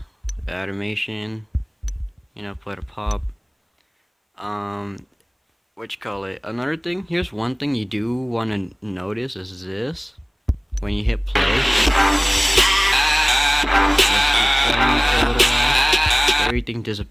Animation, you know, put a pop. What you call it? Another thing, here's one thing you do want to notice is this. When you hit play, everything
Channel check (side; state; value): both; identical; correlation 1.00